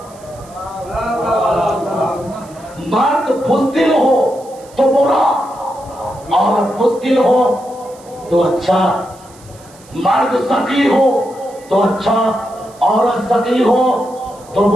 مرد بزدل ہو تو برا، عورت بزدل ہو تو اچھا. مرد سخی ہو تو اچھا، عورت سخی ہو تو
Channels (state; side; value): noise; right; hiss, 25 dB below the sound